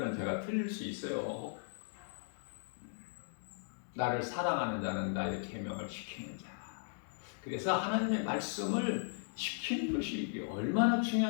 제가 틀릴 수 있어요. 나를 사랑하는 자는 나의 계명을 지키는 자. 그래서 하나님의 말씀을 지키는 것이 이게 얼마나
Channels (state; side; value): silent; right; digital silence